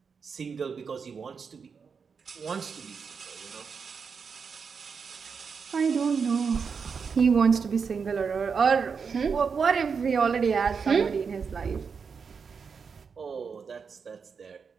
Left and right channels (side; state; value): left; quieter; 5.8 dB